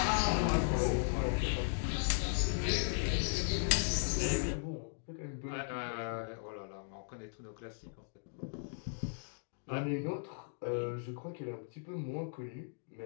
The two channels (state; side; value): silent; right; digital silence